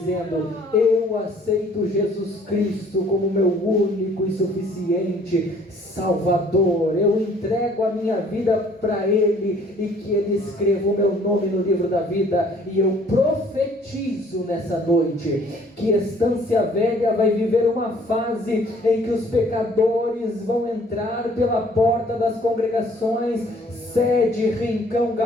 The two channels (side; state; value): both; normal; correlation 0.58